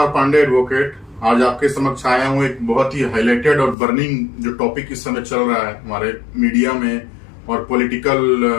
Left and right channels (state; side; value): drops out; right; at 3.8 s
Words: पांडे एडवोकेट आज आपके समक्ष आया हूँ एक बहुत ही हाईलाइटेड और बर्निंग जो टॉपिक इस समय चल रहा है हमारे मीडिया में और पॉलिटिकल